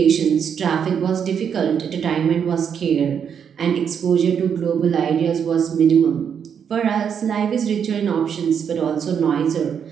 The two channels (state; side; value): quieter; left; 7.6 dB